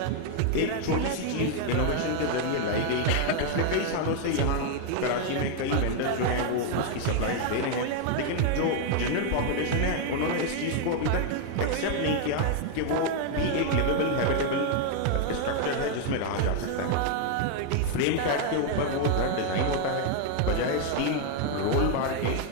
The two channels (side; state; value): both; different; correlation 0.00